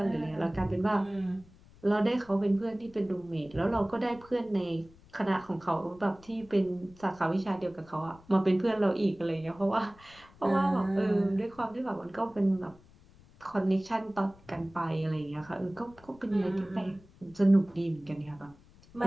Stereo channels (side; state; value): left; noise; rumble, 25 dB below the sound